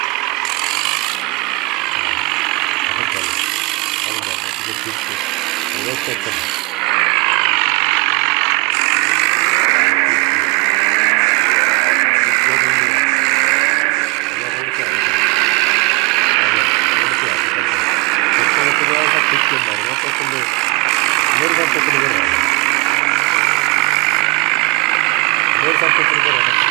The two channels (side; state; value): left; quieter; 27.6 dB